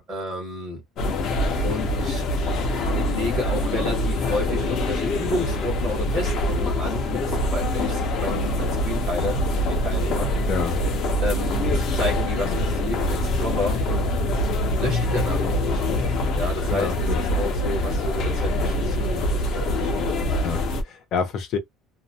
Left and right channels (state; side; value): normal; both; correlation 0.49